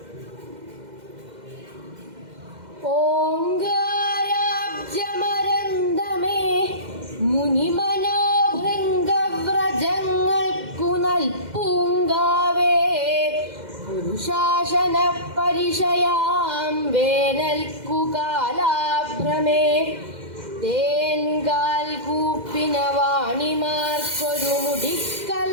ഓങ്കാരാബ്ജമരന്തമേ മുനിമനോഭൃംഗവ്രജങ്ങൾക്കു നൽപൂങ്കാവേ. പുരുഷാസന പരിശയാം വേനൽക്കു കാലാഭ്രമേ. തേൻകാൽ കൂപ്പിന വാണിമാർക്കൊരു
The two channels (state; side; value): late; left; 2.1 ms